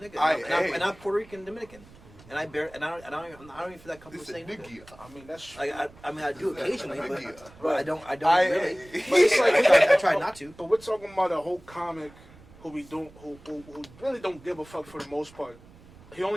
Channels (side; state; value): right; noise; rumble, 23 dB below the sound